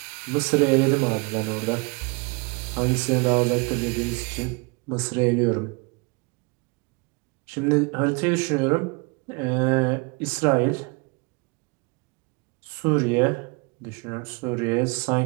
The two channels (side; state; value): left; quieter; 29.8 dB